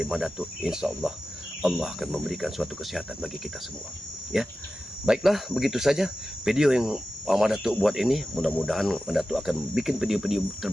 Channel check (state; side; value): normal; both; correlation 0.94